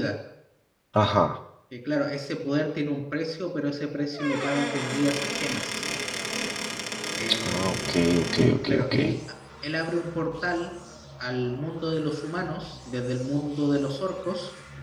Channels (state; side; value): identical; both; correlation 1.00